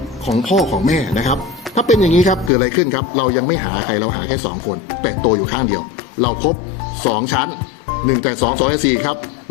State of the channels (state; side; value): drops out; right; at 2.5 s